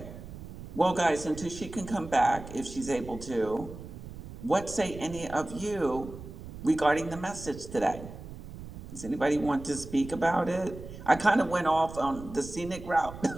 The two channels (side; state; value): right; noise; rumble, 13 dB below the sound